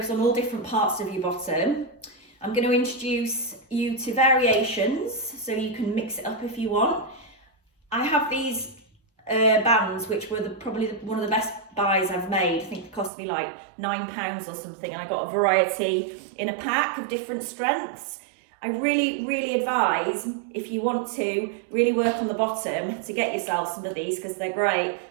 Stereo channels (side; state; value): left; drops out; at 13.1 s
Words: on all different parts of your bottom. I'm going to introduce you to variations so you can mix it up if you want. I have these bands which were probably one of the best buys I've made. I think it cost me like £9 or something, and I got a variety in a pack of different strengths. I really advise, if you want to really work on the bottom, to get yourself some of these because they're great,